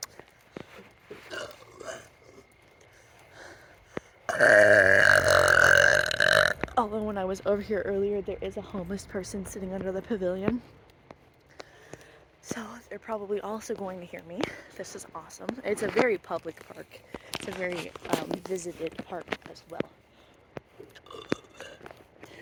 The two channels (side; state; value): both; identical; correlation 1.00